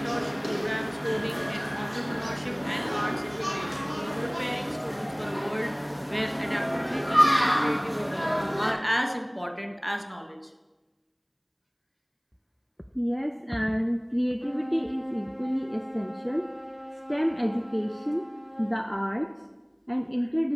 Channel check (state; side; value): identical; both; correlation 1.00